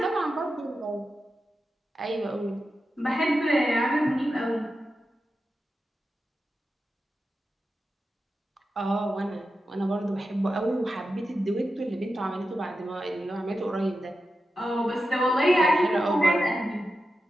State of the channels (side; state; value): both; normal; correlation 0.90